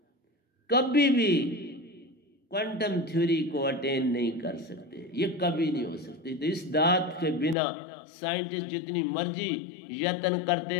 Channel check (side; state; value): right; drops out; at 7.6 s